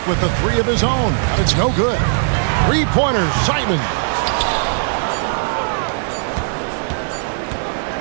with the three of his own, but it's no good. Three-pointer, Simon.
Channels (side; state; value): left; silent; digital silence